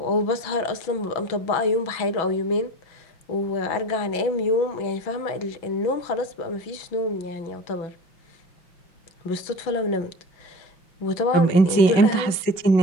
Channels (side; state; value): right; late; 5.3 ms